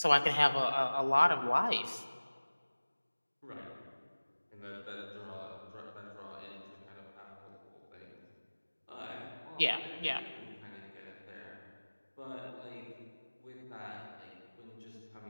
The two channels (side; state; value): both; inverted; correlation -1.00